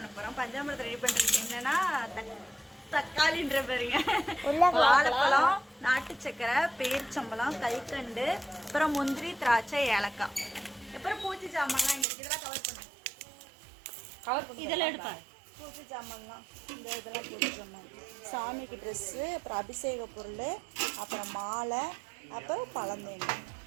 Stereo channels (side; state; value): left; drops out; at 12.1 s